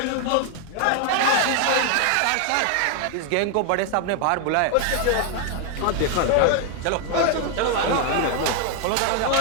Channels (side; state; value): both; different; correlation 0.01